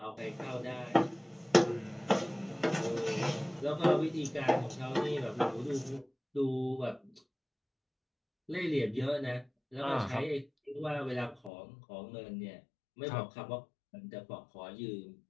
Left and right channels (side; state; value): right; drops out; at 11.5 s